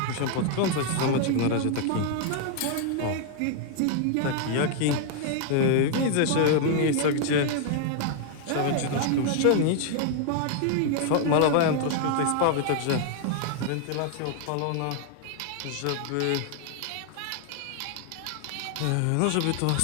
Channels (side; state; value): both; different; correlation 0.00